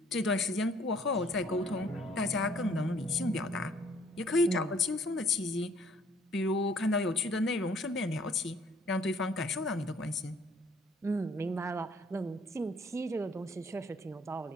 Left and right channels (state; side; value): normal; both; correlation 0.60